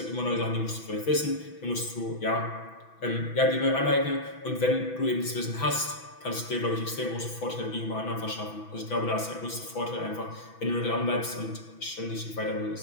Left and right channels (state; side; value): late; right; 6.1 ms